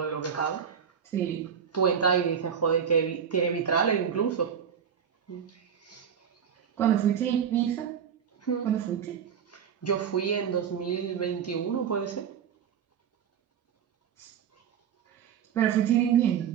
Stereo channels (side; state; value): left; quieter; 7.8 dB